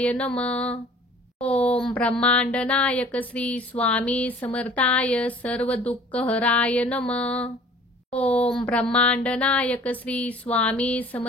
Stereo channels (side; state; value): both; normal; correlation 0.49